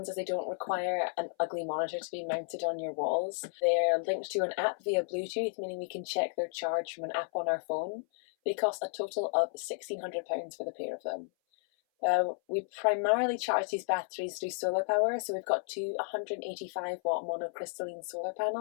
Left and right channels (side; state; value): right; silent; 56 dB below the other